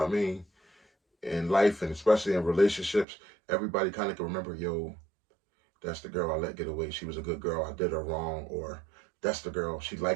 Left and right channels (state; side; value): drops out; left; at 3.1 s